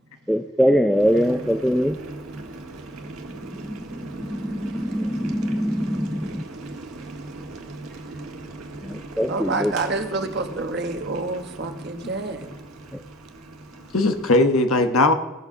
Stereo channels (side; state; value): both; normal; correlation 0.60